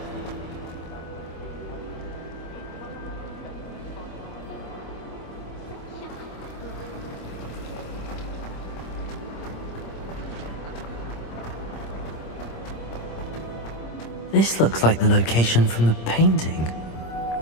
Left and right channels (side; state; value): right; late; 26 ms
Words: This looks like the location from the painting.